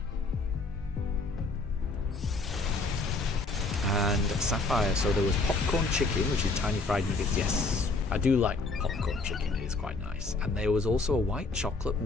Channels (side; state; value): right; quieter; 3.5 dB